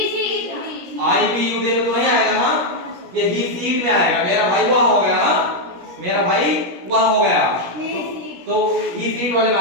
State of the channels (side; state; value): left; late; 16 ms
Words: आई बी यू दे में तो नहीं आएगा ना, ये ही सीट में आएगा। मेरा भाई वह हो गया ना, मेरा भाई वह हो गया, तो ही सीट वाले में